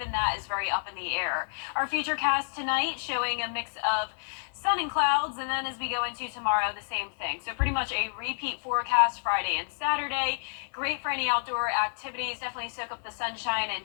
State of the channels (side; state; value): right; silent; digital silence